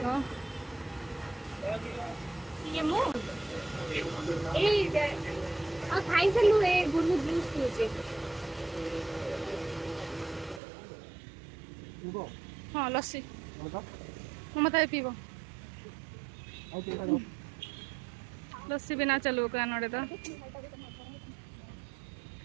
को ये मु ए आ खाई से लु ए गुरु जूस पीछे हाँ लस्सी मत पीब लस्सी बिना चलू का नोड़े तो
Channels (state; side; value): drops out; left; at 10.6 s